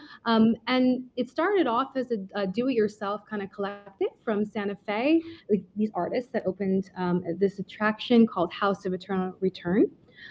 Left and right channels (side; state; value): both; identical; correlation 1.00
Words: and it started off as a do-it-yourself kind of collective from Santa Fe, like these artists that opened this attraction called House of Eternal Return.